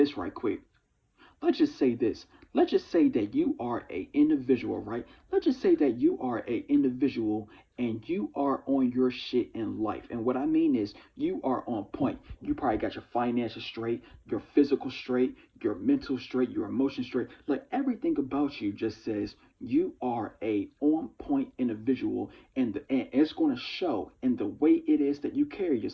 right quick. Let's just say this. Let's just say that you are a individual, right? Let's just say that you are a individual and you are on your shit in life. And what I mean is you are on point. You probably got your finances straight, your physical straight, your mental straight, your emotions straight. Like everything about you just says you are a on point individual and it's going to show in the way it is that you carry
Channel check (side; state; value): both; identical; correlation 1.00